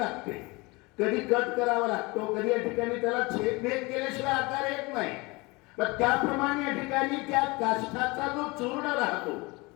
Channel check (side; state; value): right; quieter; 24.9 dB